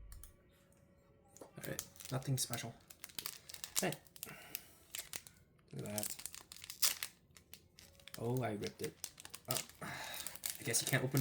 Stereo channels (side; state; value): both; identical; correlation 1.00